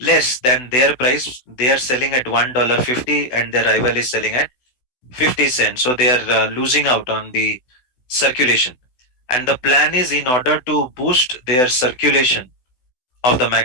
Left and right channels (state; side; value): late; right; 16 ms